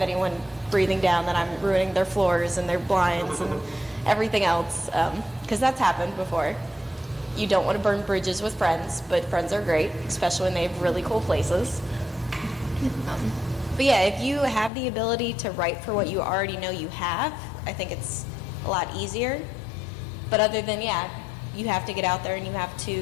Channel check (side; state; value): right; drops out; at 14.7 s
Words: anyone breathing down that I'm ruining their floors and their blinds and everything else, because that's happened before. You don't want to burn bridges with friends, but friends are great, especially when they have really cool places. But if you have the ability to write for what you already know you have, I think it's a lot easier. But other than, you have to get out there and you have